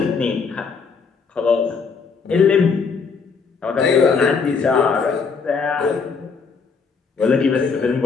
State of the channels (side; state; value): right; quieter; 5.3 dB